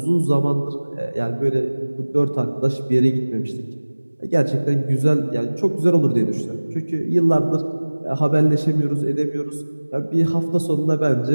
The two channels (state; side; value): inverted; both; correlation -1.00